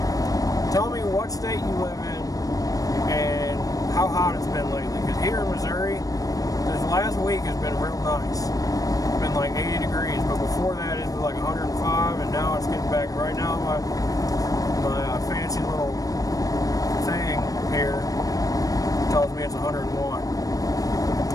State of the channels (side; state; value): right; late; 0.17 ms